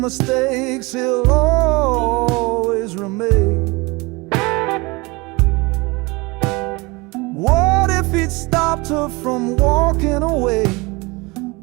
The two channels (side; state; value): left; quieter; 25.3 dB